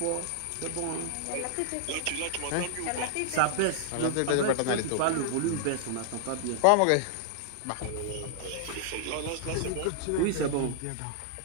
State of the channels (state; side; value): different; both; correlation -0.01